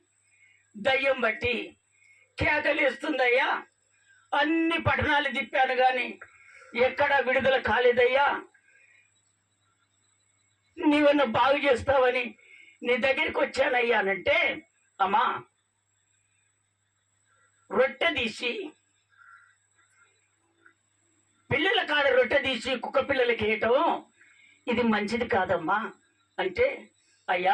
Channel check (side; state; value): both; identical; correlation 1.00